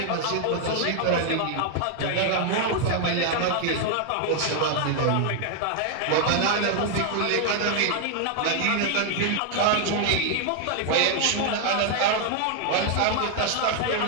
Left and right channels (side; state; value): both; different; correlation 0.00